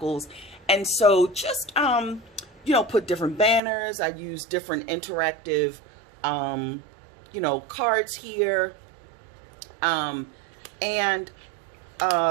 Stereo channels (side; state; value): left; drops out; at 3.6 s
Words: And so just, put different banners. I used different interactive, cards here.